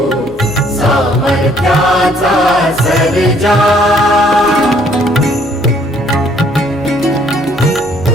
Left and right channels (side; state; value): both; normal; correlation 0.63